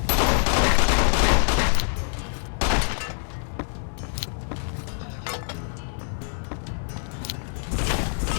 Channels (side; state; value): right; silent; digital silence